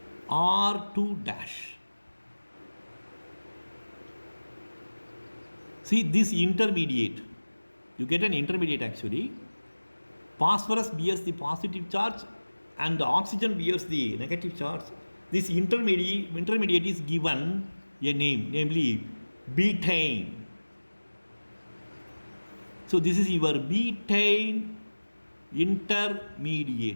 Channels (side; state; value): both; inverted; correlation -1.00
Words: R2 dash. See this intermediate, you get an intermediate actually. Phosphorus bears the positive charge and the oxygen bears the negative charge. This intermediate is given a name, namely betaine. So this is your betaine